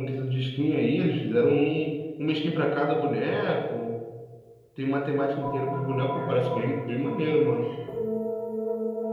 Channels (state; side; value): identical; both; correlation 1.00